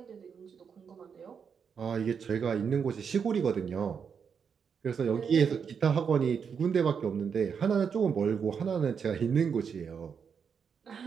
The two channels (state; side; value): quieter; left; 6.6 dB